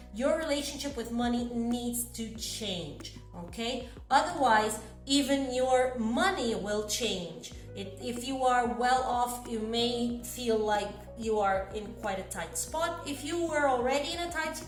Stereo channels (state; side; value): identical; both; correlation 1.00